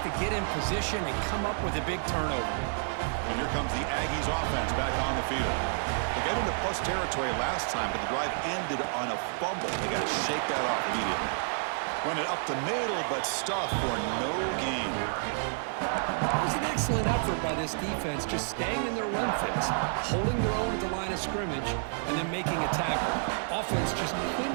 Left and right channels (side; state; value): left; silent; 56 dB below the other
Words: to get in position and come up with a big turnover. And here comes the Aggies offense back on the field. They got into plus territory last time, but the drive ended on a fumble. They got to shake that off immediately. Run it up the middle, but stuff for no gain. It was an excellent effort by this defense, just staying in their run fits, holding their own at the line of scrimmage, and then making a tackle. Offense just